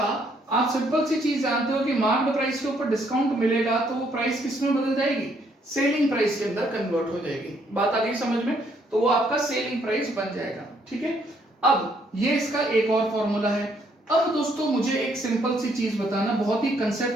सिंपल सी चीज जानते हो कि मार्क्ड प्राइस के ऊपर डिस्काउंट मिलेगा तो वो प्राइस किस में बदल जाएगी, सेलिंग प्राइस के अंदर कन्वर्ट हो जाएगी। बात आ गई समझ में? तो वो आपका सेलिंग प्राइस बन जाएगा। ठीक है, अब ये इसका एक और फॉर्मूला है। अब दोस्तों मुझे एक सिंपल सी चीज बताना, बहुत ही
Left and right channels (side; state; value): both; normal; correlation 0.69